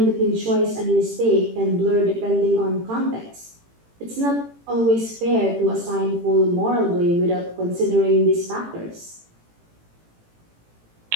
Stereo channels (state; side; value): late; left; 18 ms